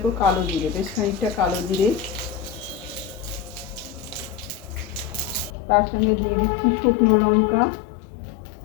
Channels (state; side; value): drops out; right; at 5.5 s